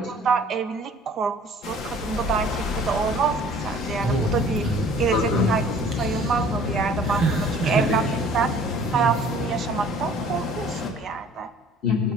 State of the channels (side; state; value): both; normal; correlation 0.51